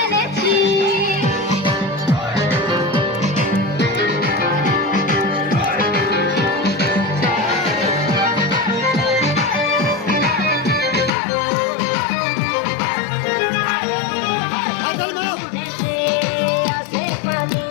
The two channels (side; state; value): right; drops out; at 11.1 s